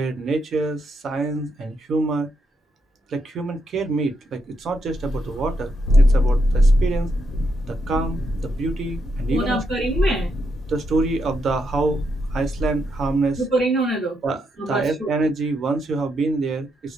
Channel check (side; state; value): both; normal; correlation 0.80